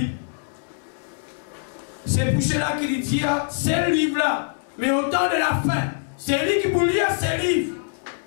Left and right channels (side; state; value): right; silent; digital silence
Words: c'est pour cela qu'il dit, c'est le livre-là. Mais au temps de la fin, c'est lui qui peut lire ces livres.